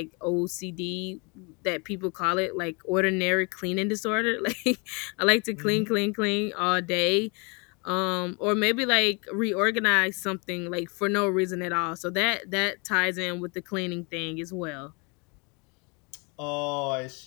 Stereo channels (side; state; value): right; quieter; 31.6 dB